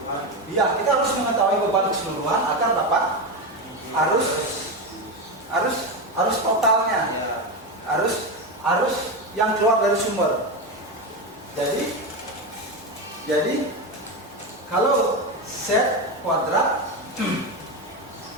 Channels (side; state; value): both; normal; correlation 0.15